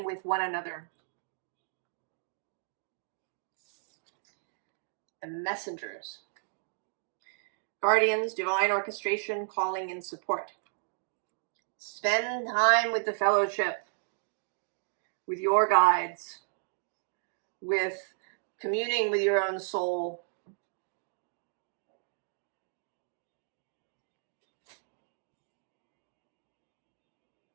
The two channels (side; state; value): left; silent; digital silence